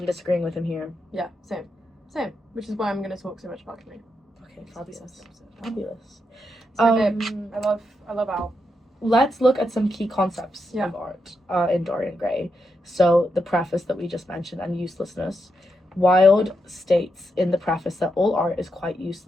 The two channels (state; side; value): normal; both; correlation 0.83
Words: disagreeing with him here. yeah, same, which is why I'm going to talk so much about Camille. Okay, It's the best fabulous. episode. Fabulous. So babe, I love Al. Let's look at some key concepts Yeah. of art in Dorian Gray. So the preface that we just mentioned and uselessness. Wilde states in the preface that all art is quite